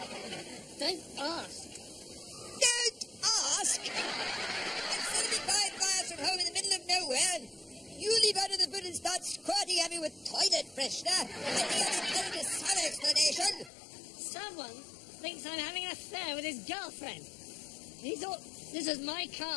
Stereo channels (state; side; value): drops out; right; at 13.7 s